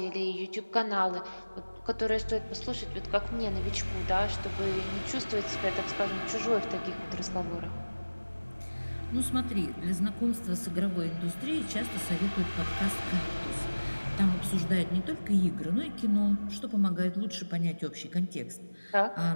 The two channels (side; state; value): both; inverted; correlation -1.00